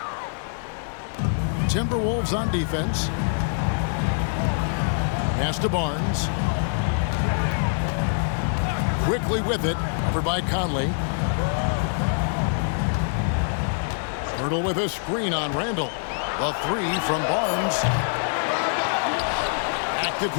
Timberwolves on defense. Pass to Barnes. Quickly with it, covered by Conley. Hurdle with a screen on Randall. The three from Barnes. Active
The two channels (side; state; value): right; silent; 62 dB below the other